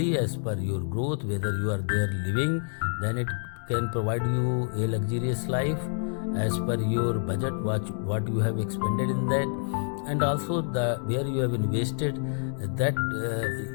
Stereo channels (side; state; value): right; silent; digital silence